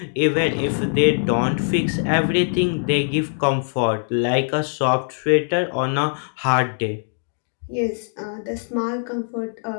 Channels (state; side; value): silent; right; digital silence